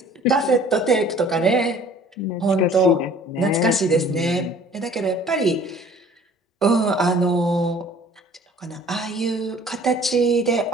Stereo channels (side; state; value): both; normal; correlation 0.51